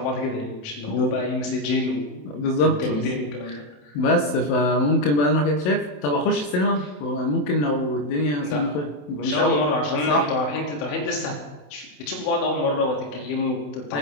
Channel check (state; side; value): late; right; 27 ms